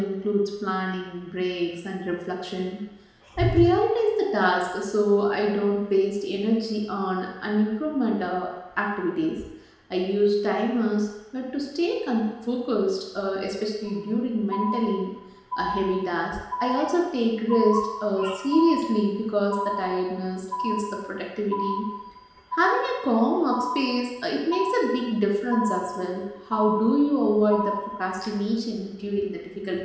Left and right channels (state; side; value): identical; both; correlation 1.00